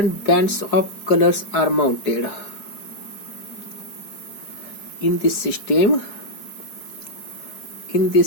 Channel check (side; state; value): right; late; 4.7 ms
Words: bands of colors are mounted. In this system,